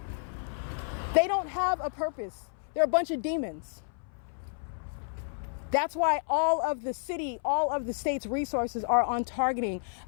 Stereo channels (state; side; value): silent; right; 57 dB below the other